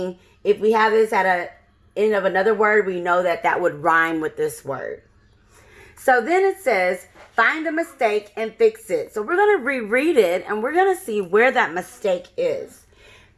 if we have this at a end of another word, we know that would rhyme with this word. So then it says, find a mistake and fix it. So we're going to reread it and we're going to see where that mistake is.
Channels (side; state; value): both; identical; correlation 1.00